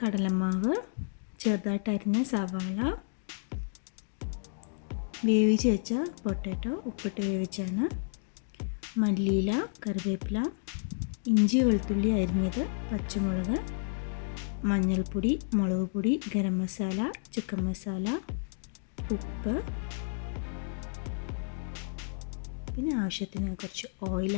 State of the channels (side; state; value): right; silent; digital silence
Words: കടലമാവ്, ചെറുതായിട്ട് അരിഞ്ഞ സവാള, വേവിച്ച് വെച്ച പൊട്ടാറ്റോ ഉപ്പിട്ട് വേവിച്ചാണ്, മല്ലിയില, കറിവേപ്പില, ഇഞ്ചി വെളുത്തുള്ളി അരിഞ്ഞത്, പച്ചമുളക്, മഞ്ഞൾപ്പൊടി, മുളക് പൊടി, ഗരം മസാല, ചിക്കൻ മസാല, ഉപ്പ്, പിന്നെ ആവശ്യത്തിന് കുറച്ച്